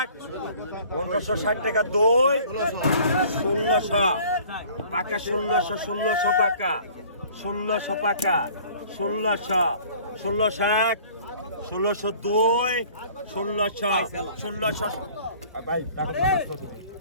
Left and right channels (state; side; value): inverted; both; correlation -0.51